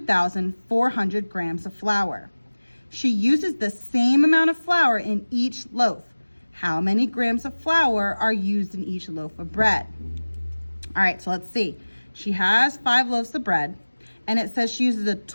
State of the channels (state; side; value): inverted; both; correlation -1.00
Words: grams of flour. She uses the same amount of flour in each loaf. How many grams of flour are used in each loaf of bread? All right, so let's see. She has 5 loaves of bread, and it says she uses a